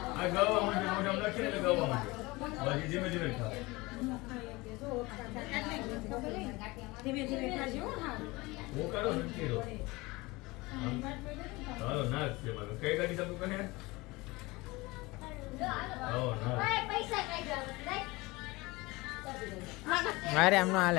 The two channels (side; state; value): right; quieter; 22.6 dB